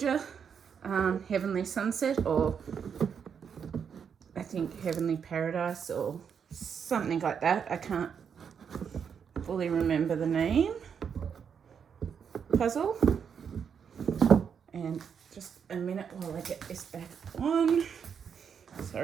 Heavenly Sunset, or I think Heavenly Paradise or something like that. I can't fully remember the name. Puzzle. And just a minute while I get this back on.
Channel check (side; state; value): left; quieter; 7.1 dB